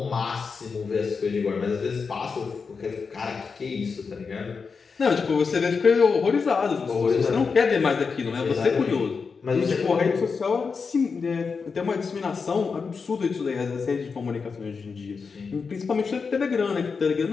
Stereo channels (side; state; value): right; quieter; 5.2 dB